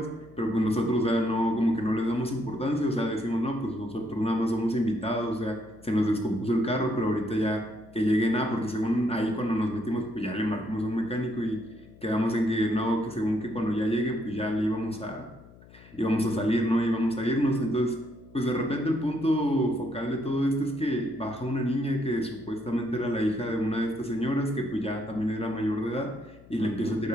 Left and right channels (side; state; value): left; noise; hum, 22 dB below the sound